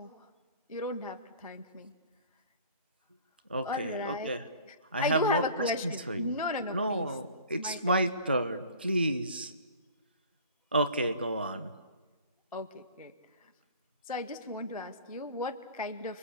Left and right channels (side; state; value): both; inverted; correlation -0.44